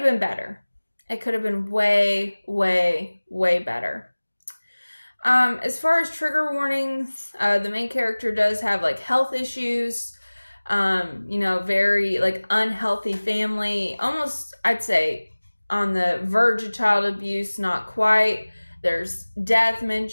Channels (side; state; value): both; inverted; correlation -1.00